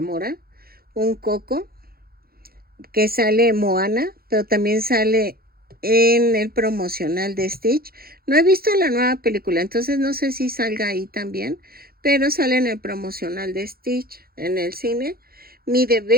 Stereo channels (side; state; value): left; late; 0.44 ms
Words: un coco que sale en Moana, pero también sale en el promocional de Stitch. No he visto la nueva película, entonces no sé si salga ahí también, pero sale en el promocional de Stitch en el cine. Mide